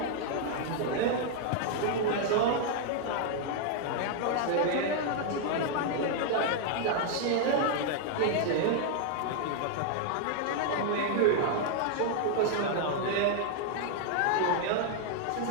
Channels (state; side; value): different; both; correlation 0.00